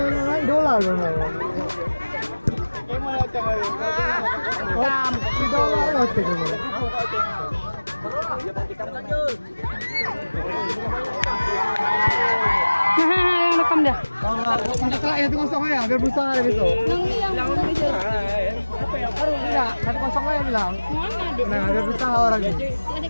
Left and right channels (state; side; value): inverted; both; correlation -1.00